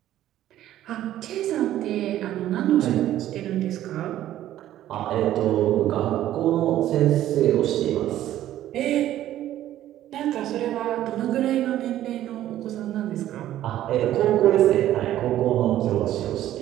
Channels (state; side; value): quieter; left; 12.9 dB